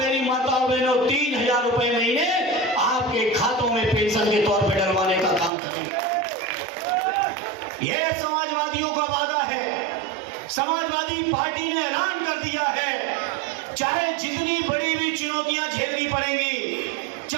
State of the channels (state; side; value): drops out; left; at 5.5 s